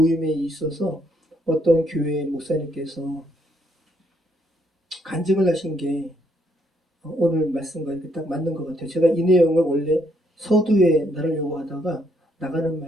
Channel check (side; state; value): both; normal; correlation 0.72